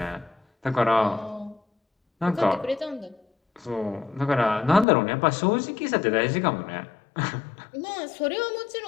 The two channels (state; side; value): drops out; right; at 4.9 s